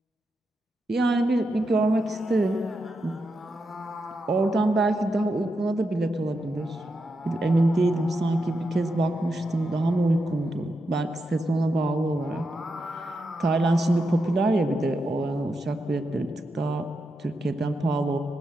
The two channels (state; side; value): normal; both; correlation 0.85